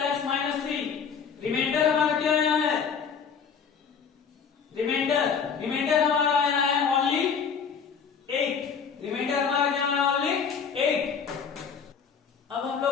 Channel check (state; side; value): quieter; right; 6.5 dB